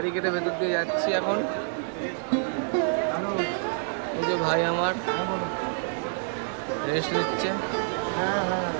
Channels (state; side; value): silent; left; digital silence